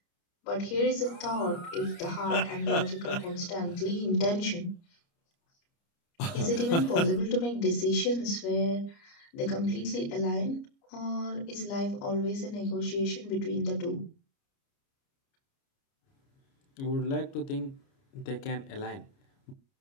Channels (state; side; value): late; right; 29 ms